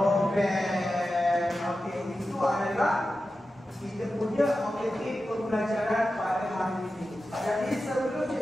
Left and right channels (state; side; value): normal; both; correlation 0.92